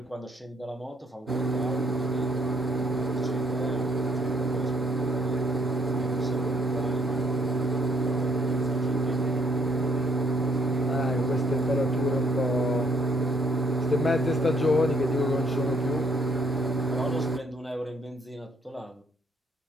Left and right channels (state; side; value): normal; both; correlation 0.68